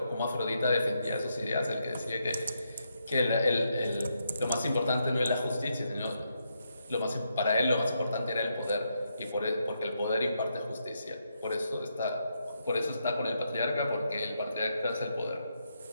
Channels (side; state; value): both; inverted; correlation -0.80